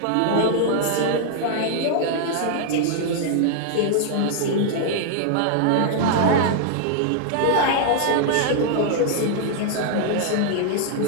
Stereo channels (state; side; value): different; both; correlation -0.01